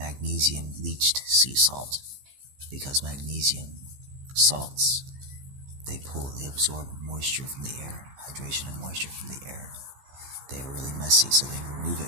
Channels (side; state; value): left; late; 15 ms